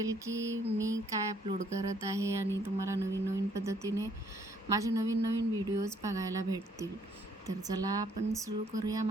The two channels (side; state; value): both; normal; correlation 0.66